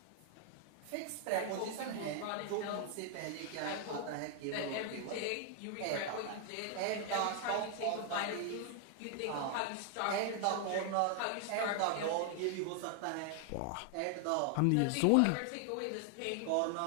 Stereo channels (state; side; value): different; both; correlation 0.00